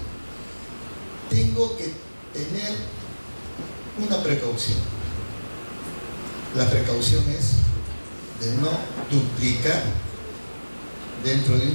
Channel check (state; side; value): inverted; both; correlation -1.00